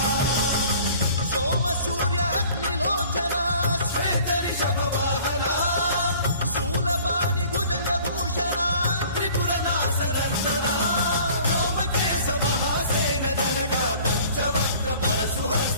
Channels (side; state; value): both; inverted; correlation -0.50